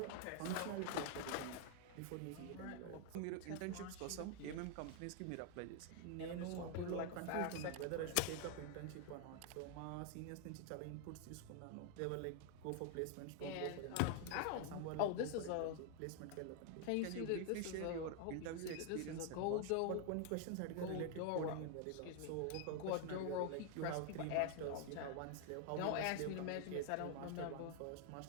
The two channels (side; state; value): both; different; correlation 0.00